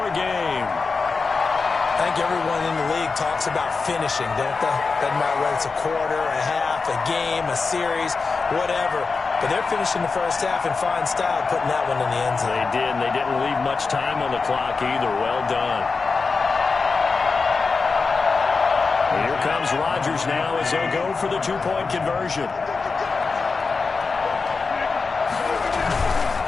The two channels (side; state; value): right; quieter; 4.5 dB